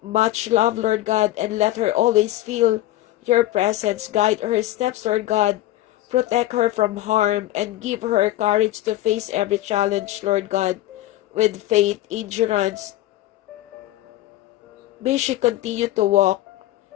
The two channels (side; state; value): right; quieter; 15.2 dB